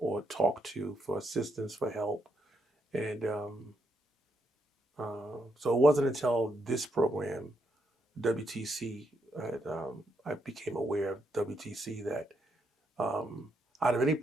talk to for assistance, for help, and so it wasn't until this program, WTC, I became aware of WTC, that um, out of any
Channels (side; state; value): both; normal; correlation 0.79